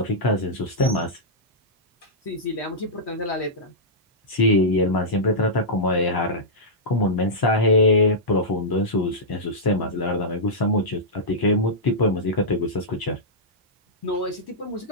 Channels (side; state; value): both; normal; correlation -0.12